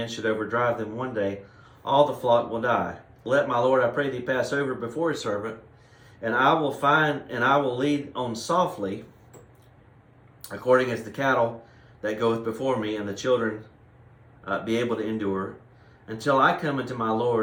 should overdrive them one day, all the flock will die. Let my Lord, I pray thee, pass over before his servant, and I will lead on softly, according as the cattle that goeth before me, and the children be able to endure, until I come unto my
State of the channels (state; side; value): identical; both; correlation 1.00